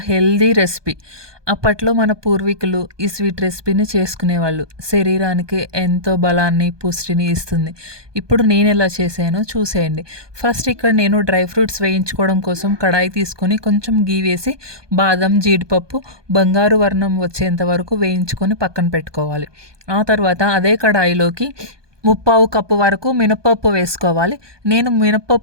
హెల్దీ రెసిపీ. అప్పట్లో మన పూర్వీకులు ఈ స్వీట్ రెసిపీని చేసుకునేవాళ్ళు. శరీరానికి ఎంతో బలాన్ని, పుష్టిని ఇస్తుంది. ఇప్పుడు నేను ఎలా చేశానో చూసేయండి. ఫస్ట్ ఇక్కడ నేను డ్రై ఫ్రూట్స్ వేయించుకోవడం కోసం కడాయి తీసుకొని కొంచెం గీ వేసి బాదం, జీడిపప్పు బంగారు వర్ణం వచ్చేంత వరకు వేయించుకొని పక్కన పెట్టుకోవాలి. ఆ తర్వాత అదే కడాయిలోకి ముప్పావు కప్పు వరకు మినపప్పు వేసుకోవాలి. నేను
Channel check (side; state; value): left; late; 1.2 ms